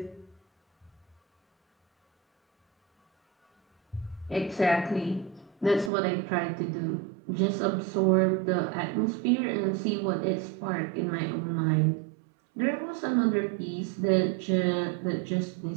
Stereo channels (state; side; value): drops out; left; at 5.9 s